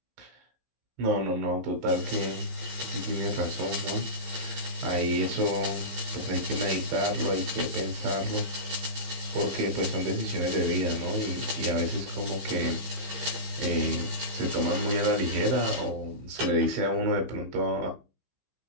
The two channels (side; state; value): left; late; 15 ms